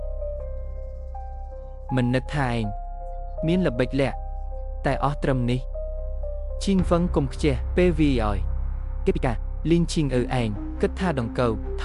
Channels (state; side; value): identical; both; correlation 1.00